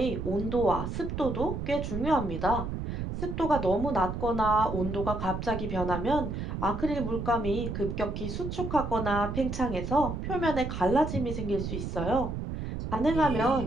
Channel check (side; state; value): right; noise; rumble, 4 dB below the sound